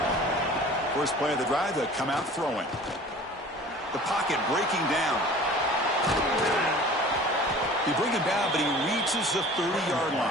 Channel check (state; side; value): normal; both; correlation 0.44